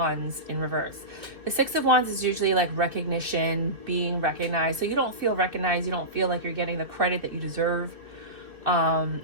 in reverse. The 6 of Wands is usually like recognition, being recognized. So you don't feel recognized. You don't feel like you're getting the credit that you deserve.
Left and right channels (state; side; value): late; left; 2.0 ms